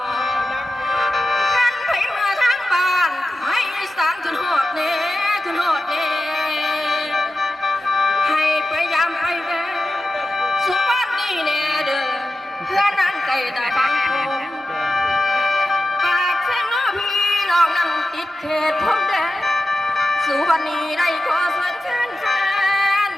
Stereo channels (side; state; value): both; normal; correlation 0.92